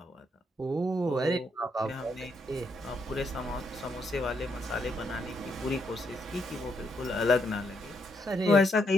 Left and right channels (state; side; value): normal; both; correlation 0.76